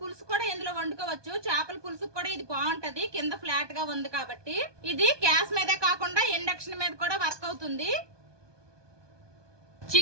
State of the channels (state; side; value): late; left; 1.2 ms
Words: కూడా ఇందులో వండుకోవచ్చు. చేపల పులుసు కూడా ఇది బాగుంటది, కింద ఫ్లాట్ గా ఉంది కాబట్టి. ఇది గ్యాస్ మీదే కాకుండా ఇండక్షన్ మీద కూడా వర్క్ అవుతుంది.